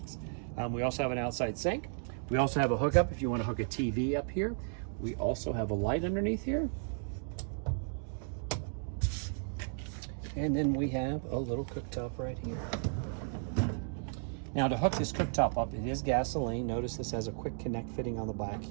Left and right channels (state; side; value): silent; left; 55 dB below the other